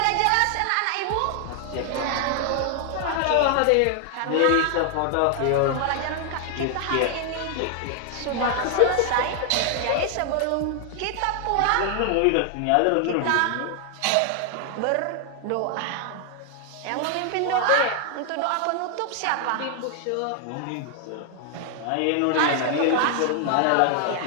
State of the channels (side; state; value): both; different; correlation 0.00